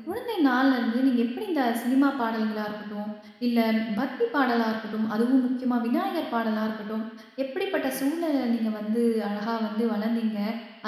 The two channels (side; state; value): both; identical; correlation 1.00